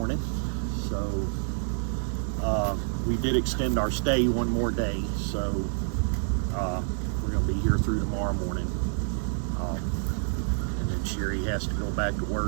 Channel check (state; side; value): silent; left; digital silence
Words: So we did extend our stay one more day, so we're going to be here through tomorrow morning. And then Sherry has to go back to